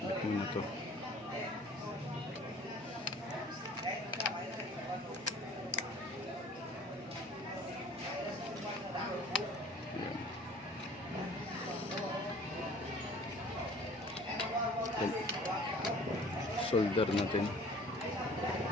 Kabit muna to. Yan. Solder natin. Yan.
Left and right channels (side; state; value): both; normal; correlation 0.49